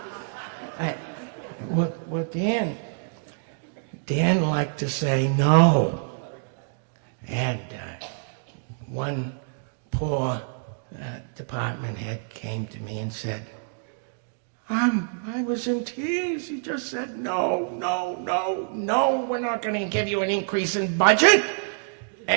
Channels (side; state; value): left; silent; digital silence